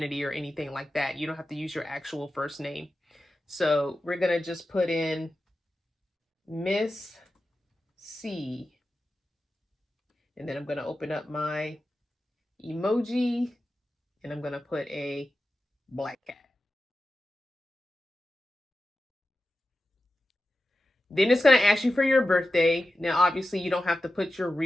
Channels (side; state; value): both; normal; correlation 0.93